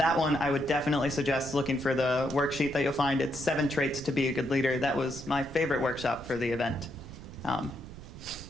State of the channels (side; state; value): right; noise; rumble, 14 dB below the sound